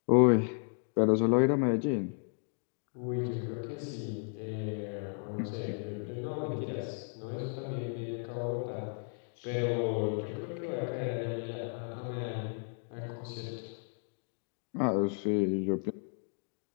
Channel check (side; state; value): right; silent; 55 dB below the other